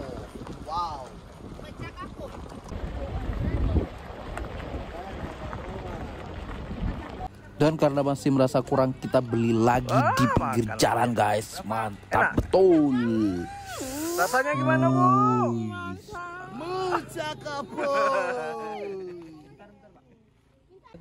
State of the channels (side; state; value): both; identical; correlation 1.00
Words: Wow. Dan karena masih merasa kurang, kita beli lagi di pinggir jalan guys. Mantap betul. Rasanya gimana bu? Mencakapo.